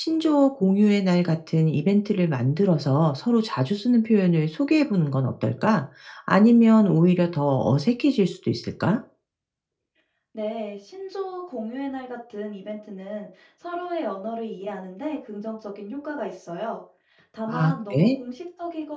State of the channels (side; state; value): both; identical; correlation 1.00